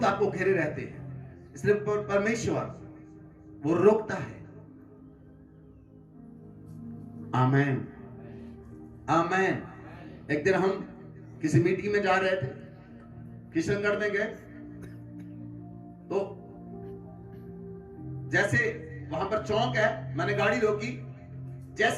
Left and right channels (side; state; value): both; identical; correlation 1.00